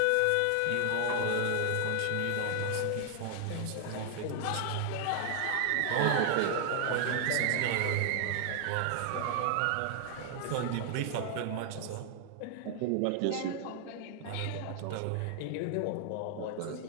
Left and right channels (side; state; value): both; different; correlation 0.00